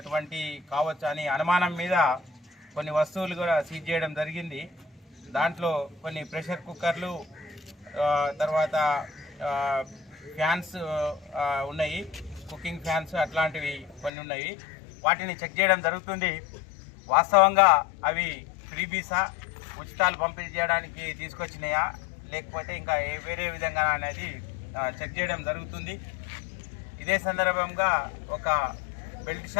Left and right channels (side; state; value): right; drops out; at 14.1 s